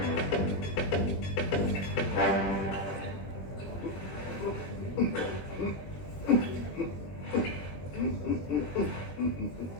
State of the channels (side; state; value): right; late; 21 ms